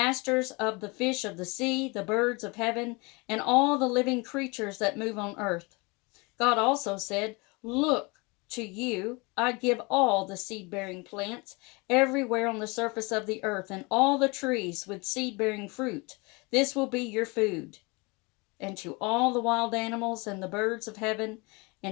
of the fish of the sea, the birds of heaven, and all the living creatures that move on earth." God also said, "Look, to you I give all the seed-bearing plants everywhere on the surface of the earth, and all the trees with seed-bearing fruit. This will be your food. And to all the wild animals and the birds of heaven,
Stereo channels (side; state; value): right; quieter; 27.5 dB